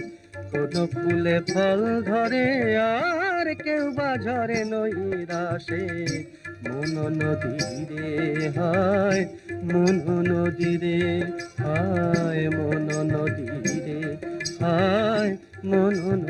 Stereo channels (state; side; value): identical; both; correlation 1.00